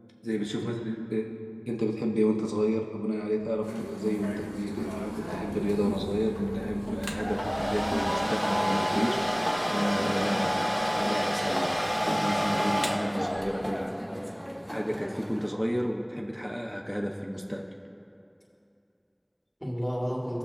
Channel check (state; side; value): identical; both; correlation 1.00